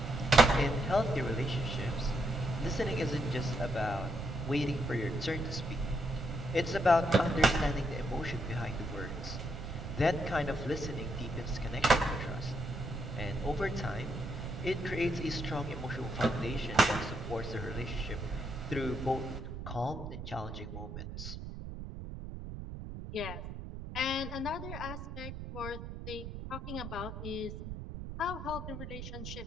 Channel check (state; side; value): noise; right; rumble, 8 dB below the sound